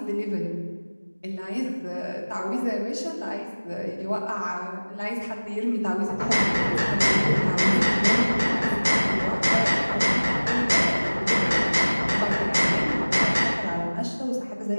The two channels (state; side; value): inverted; both; correlation -1.00